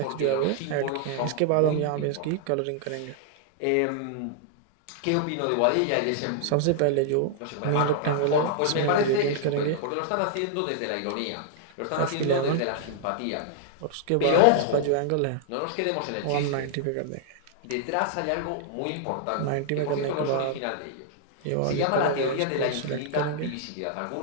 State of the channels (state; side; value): different; both; correlation -0.01